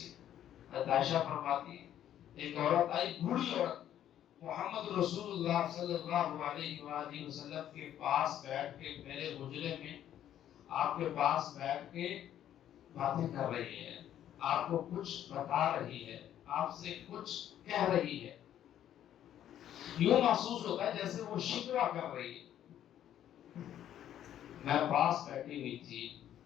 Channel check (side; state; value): right; quieter; 11.0 dB